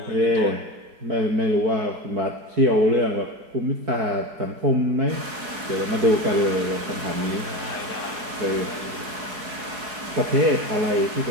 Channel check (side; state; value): left; late; 4.7 ms